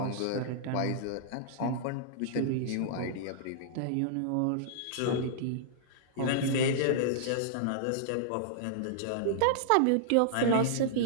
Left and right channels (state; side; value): different; both; correlation -0.02